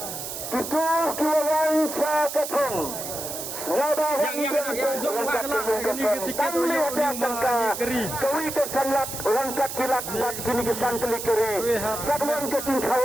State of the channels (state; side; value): noise; right; hiss, 7 dB below the sound